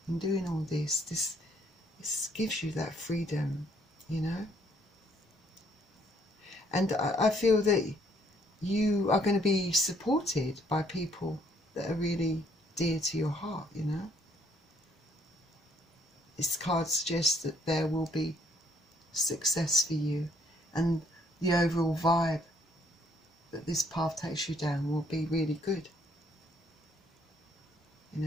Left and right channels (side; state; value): both; normal; correlation 0.66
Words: in doing all this gives you that freedom, you know. And I feel that you are going to be supported by people that are really dear to your heart, you know. This card suggests that there will be success for you, and the overall vibe that this path takes you down will be really good. You